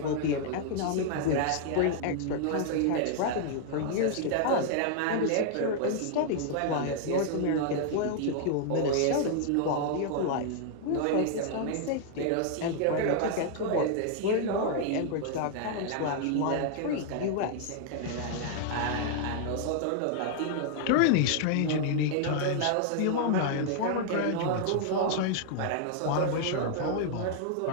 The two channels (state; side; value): different; both; correlation -0.01